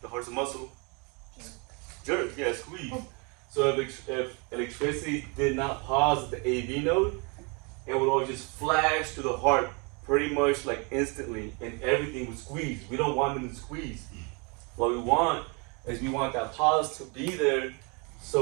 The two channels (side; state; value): left; quieter; 32.1 dB